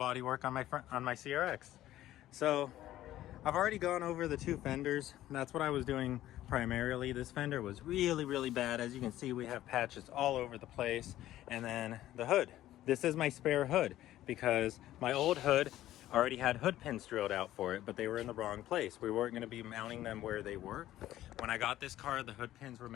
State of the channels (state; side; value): quieter; right; 13.9 dB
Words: on my CRX. So I've already gone over the two fenders. That's what I was doing primarily. This fender was really bad. As you can see, we have patches all over the place. And then the hood. This is my spare hood because my old hood already had hood pins drilled out for it, but they were in the wrong place. We weren't going to be mounting them where they were. When I got this car, the hood pins were